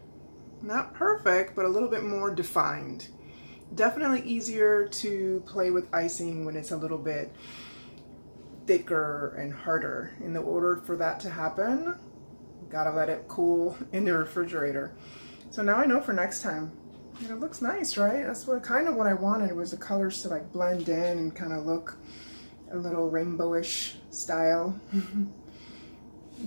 Not perfect, but a little bit more defined. Definitely easier to play with icing when it's a little bit thicker and harder. In order for that to happen, gotta let it cool in the refrigerator. So now I know for next time. And it looks nice, right? That's kind of what I wanted, was the colors to like blend in and kind of look a little rainbowish style.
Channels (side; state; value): both; inverted; correlation -1.00